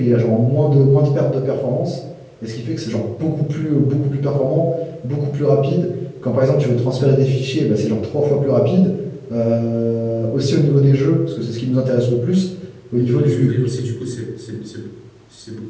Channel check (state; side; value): identical; both; correlation 1.00